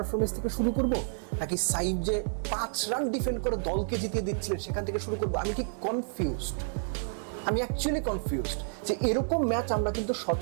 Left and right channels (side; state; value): left; silent; digital silence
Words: থেকে শুরু করব, নাকি সাইড যে 5 রান ডিফেন্ড করে দলকে জিতিয়ে দিচ্ছিলেন সেখান থেকে শুরু করব? আমি ঠিক কনফিউজড, আমি অ্যাকচুয়ালি কনফিউজড যে এরকম ম্যাচ আমরা কিন্তু